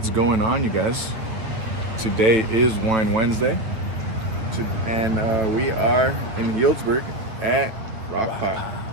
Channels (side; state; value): left; late; 9.2 ms